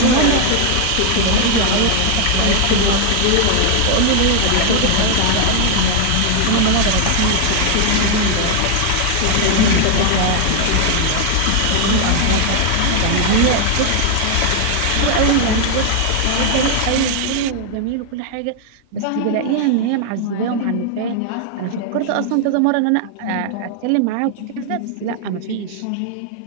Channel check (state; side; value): different; both; correlation 0.00